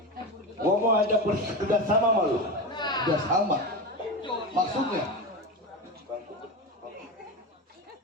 Gua mau ajak kerja sama sama lu. Udah sama. Maksudnya?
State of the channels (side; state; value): both; normal; correlation 0.21